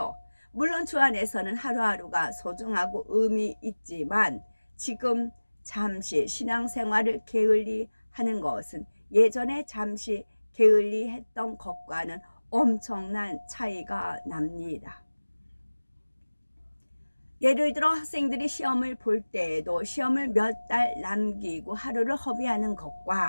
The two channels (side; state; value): both; inverted; correlation -1.00